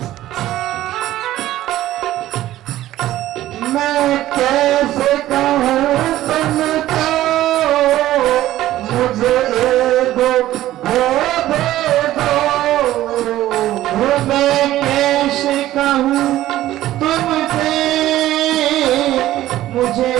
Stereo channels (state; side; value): quieter; left; 14.4 dB